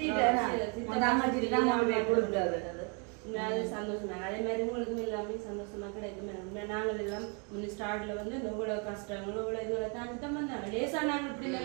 சந்தோஷமா அதே மாதிரி உங்களுக்கும் எல்லாமே சந்தோஷமா கிடைக்கும் நாங்கள் எல்லாம் முன்ன ஸ்டார்ட்ல வந்து இவ்வளவு கஷ்டங்களும் இவ்வளவு இதுகளை தாண்டி தான் வந்தாங்க லேசா நாங்கள் இப்படி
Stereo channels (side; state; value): left; quieter; 35.5 dB